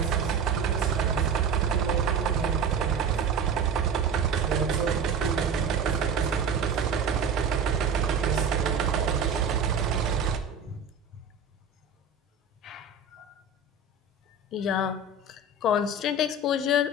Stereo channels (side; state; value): left; quieter; 4.2 dB